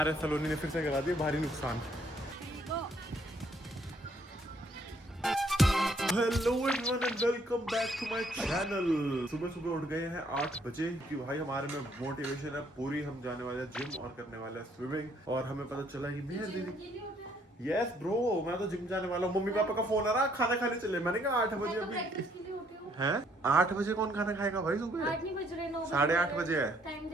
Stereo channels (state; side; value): normal; both; correlation 0.66